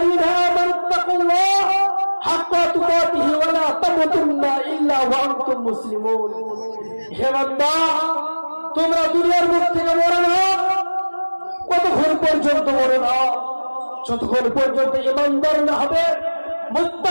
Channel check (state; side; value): inverted; both; correlation -1.00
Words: আমানু তাকুল্লাহ হাক্কা তুকাতিহি ওয়া লা তামুতুন্না ইল্লা ওয়া আনতুম মুসলিমুন। হে বান্দা, তোমরা দুনিয়ার মুখ থেকে মরো না। কতক্ষণ পর্যন্ত মরো না? যতক্ষণ পর্যন্ত ঈমানদার না হবে,